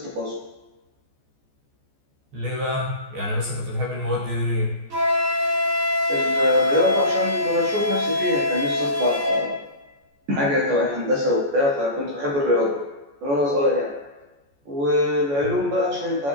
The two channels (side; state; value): left; late; 14 ms